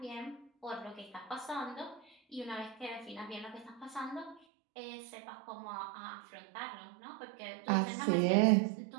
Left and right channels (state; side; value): drops out; left; at 4.4 s